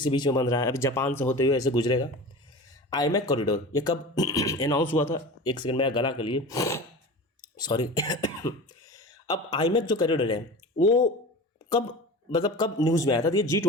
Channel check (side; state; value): both; normal; correlation 0.33